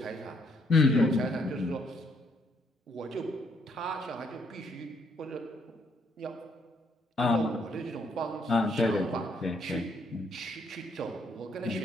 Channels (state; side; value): normal; both; correlation 0.71